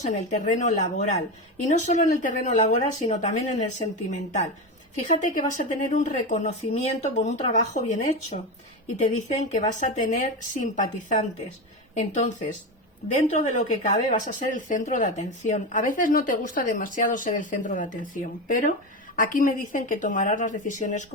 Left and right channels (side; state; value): both; normal; correlation 0.18